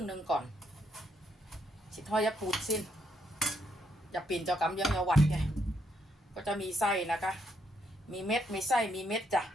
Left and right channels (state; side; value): normal; both; correlation 0.76